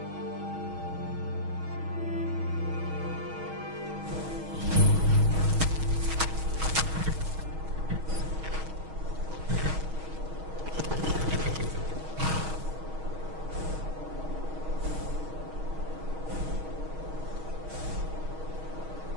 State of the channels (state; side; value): late; left; 6.3 ms